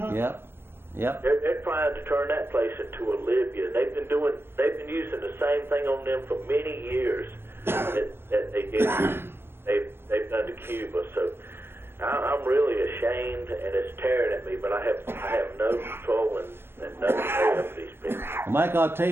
Yep. They're trying to turn that place into a Libya. They've been using the same thing on them for many years that they've done to Cuba. So I'm really ashamed, and it's tearing at me. But I have no control and no control over these people. Well, Mike, I'll tell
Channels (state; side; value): late; left; 0.11 ms